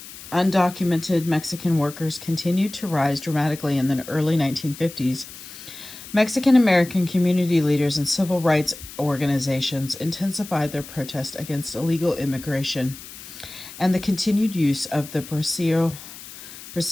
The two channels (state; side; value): noise; left; hiss, 15 dB below the sound